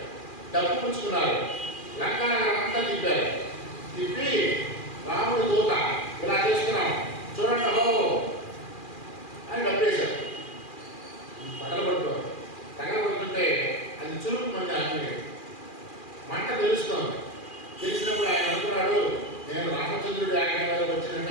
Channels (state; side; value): late; right; 2.4 ms